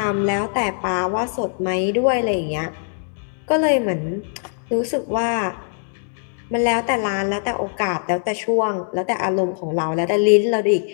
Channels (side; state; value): right; silent; digital silence